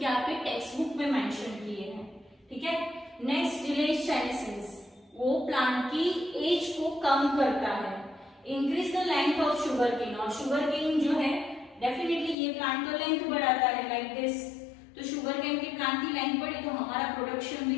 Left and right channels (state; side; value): drops out; right; at 12.4 s